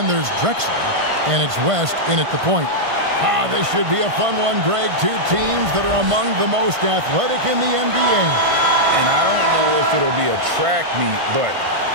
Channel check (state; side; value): late; left; 1.5 ms